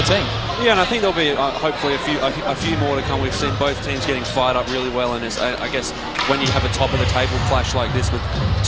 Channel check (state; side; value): identical; both; correlation 1.00